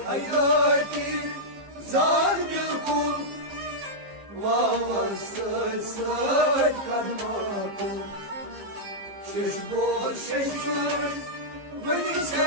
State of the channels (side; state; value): left; late; 15 ms